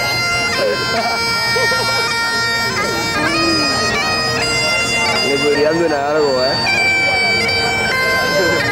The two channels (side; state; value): both; identical; correlation 1.00